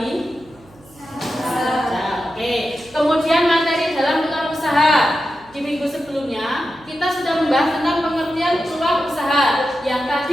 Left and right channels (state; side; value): noise; right; hum, 26 dB below the sound